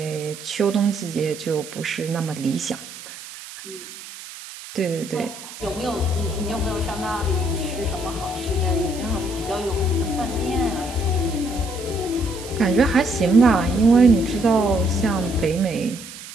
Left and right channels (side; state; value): right; noise; hiss, 14 dB below the sound